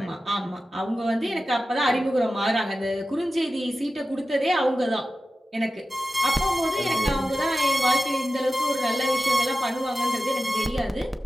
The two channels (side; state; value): both; normal; correlation 0.94